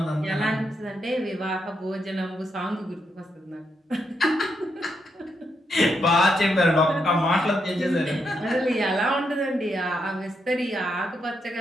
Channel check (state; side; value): normal; both; correlation 0.80